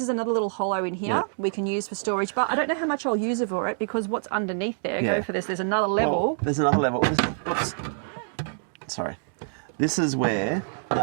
is another little hollow in here we can use for storage, but I don't know how much I'll use it for it because what's underneath there, go for this, there's another level. Well, there's another level. Oops. Sorry. This is where, now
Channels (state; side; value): silent; left; digital silence